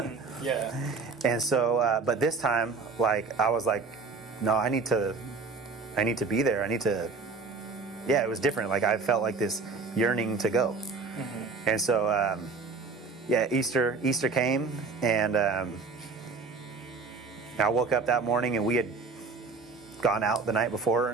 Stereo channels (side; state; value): left; quieter; 4.3 dB